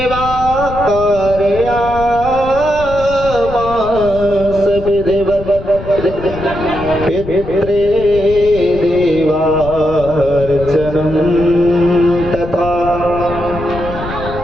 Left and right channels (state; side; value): noise; left; rumble, 11 dB below the sound